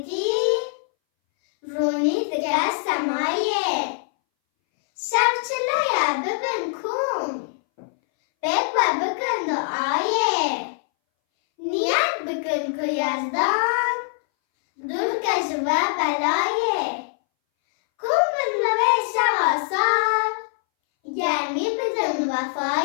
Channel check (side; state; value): right; silent; 62 dB below the other